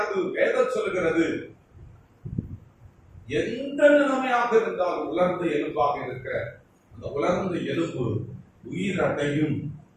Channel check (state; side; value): identical; both; correlation 1.00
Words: வேதம் சொல்லுகிறது எந்த நிலைமையாக இருந்தாலும் உலர்ந்த எலும்பாக இருக்கிற அந்த உலர்ந்த எலும்பு உயிரடையும்